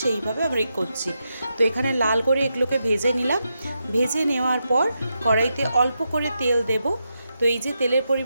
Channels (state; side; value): inverted; both; correlation -0.85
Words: সেইভাবে আমরা করছি। তো এখানে লাল করে এগুলোকে ভেজে নিলাম। ভেজে নেওয়ার পর কড়াইতে অল্প করে তেল দেব। তো এই যে তেলের